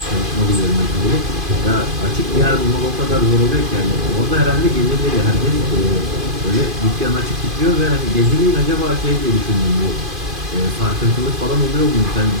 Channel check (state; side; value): late; left; 2.5 ms